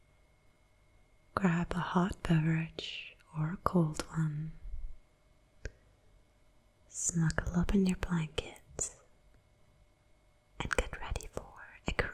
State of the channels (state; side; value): identical; both; correlation 1.00